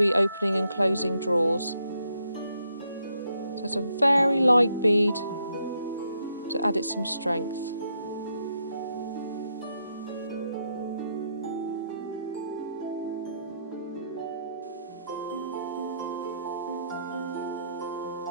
opening and closing drawers. So it's a very light bead to add it some strength.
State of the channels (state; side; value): inverted; both; correlation -0.77